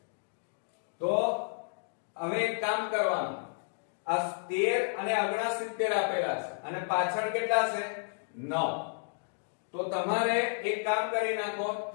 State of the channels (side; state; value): right; silent; digital silence